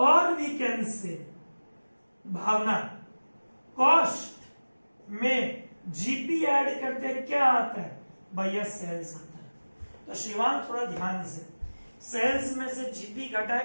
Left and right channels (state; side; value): inverted; both; correlation -1.00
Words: we can say Bhavna cost में जीपी ऐड करते क्या आता है भैया, सेल्स आता है। तो शिवांग थोड़ा ध्यान से, सेल्स में से जीपी घटा